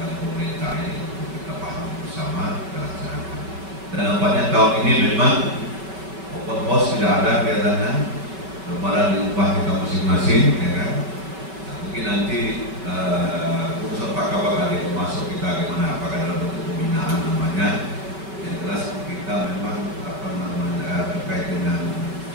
pemerintah ini untuk kita paham bersama dan laksanakan. Dan nampaknya tahun ini memang open house tidak ada kelihatannya, lebaran di rumah kita masing-masing, ya kan? Nah, mungkin nanti urusan Pak Kabak ada masuk kita gimana, apakah dalam bentuk pembinaan namanya. Yang jelas kita memang terkait dengan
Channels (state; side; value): late; left; 5.4 ms